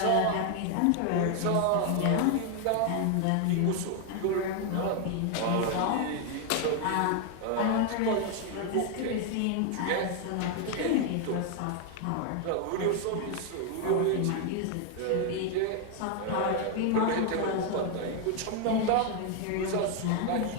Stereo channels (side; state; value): both; different; correlation 0.01